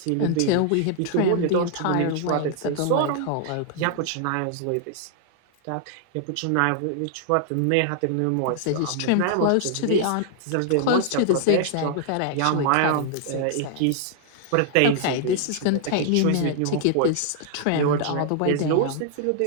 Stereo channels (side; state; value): both; different; correlation -0.01